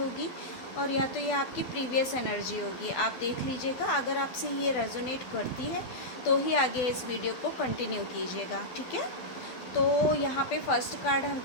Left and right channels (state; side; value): late; right; 12 ms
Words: और या तो ये आपकी प्रीवियस एनर्जी होगी। आप देख लीजिएगा, अगर आपसे ये रेजोनेट करती है तो ही आगे इस वीडियो को कंटिन्यू कीजिएगा। ठीक है, तो यहाँ पे फर्स्ट कार्ड